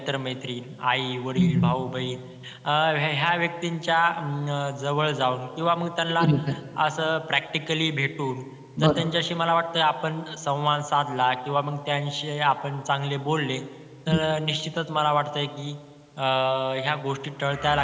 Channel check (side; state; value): both; identical; correlation 1.00